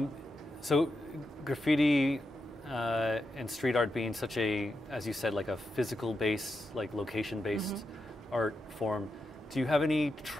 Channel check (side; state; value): both; normal; correlation 0.86